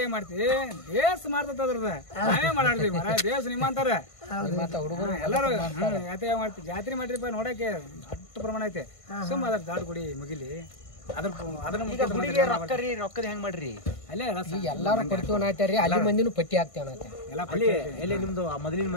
ಏನ್ ಮಾಡ್ತೀವಿ ದೇಶ ಮಾಡ್ತದ್ರದ ನಾವೇ ಮಾಡಾಡ್ತೀವಿ ಮರ ದೇಶ ನಿಮ್ಮ ಅಂತಾರ ಎಲ್ಲಾರು ಯಾತ್ರೆ ಮಾಡ್ತೀವಿ ಜಾತ್ರೆ ಮಾಡ್ರಿಪ್ಪ ನೋಡಕ್ಕೆ ಅಷ್ಟು ಪ್ರಮಾಣ ಐತೆ ಸುಮ್ಮ ಅದ್ರ ದಾಡ್ ಗುಡಿ ಮುಗಿಲಿ ರೊಕ್ಕದ ಹೆಂಗ್ ಮಾಡ್ರಿ ಅಲ್ಲೇ ಎಲ್ಲಾರು ಕೊಡ್ತೀವಿ ಅನ್ನತ್ಯಾರಿ ಅಲ್ಲಿ ಮಂದಿನೂ ಪಟ್ಟಿ ಹಾಕ್ತೇವ ಎಲ್ಲ ನಿಮ್ದು ಮೊದಲಿನ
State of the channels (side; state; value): right; late; 1.5 ms